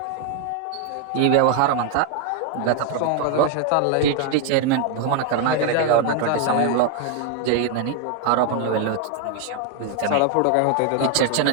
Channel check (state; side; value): different; both; correlation 0.01